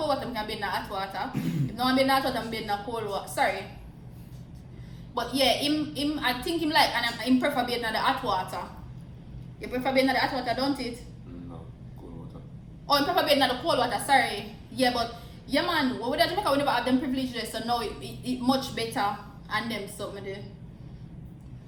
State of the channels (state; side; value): identical; both; correlation 1.00